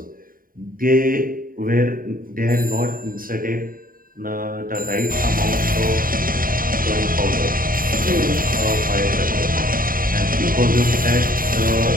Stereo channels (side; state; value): left; late; 0.41 ms